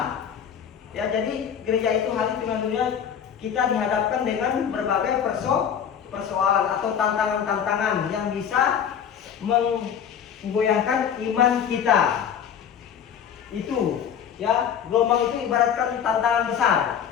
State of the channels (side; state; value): right; quieter; 8.3 dB